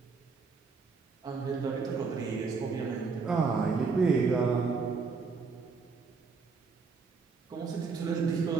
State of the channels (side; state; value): left; quieter; 4.8 dB